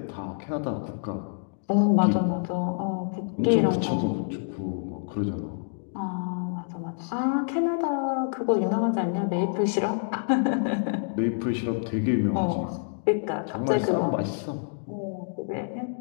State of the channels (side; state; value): right; silent; digital silence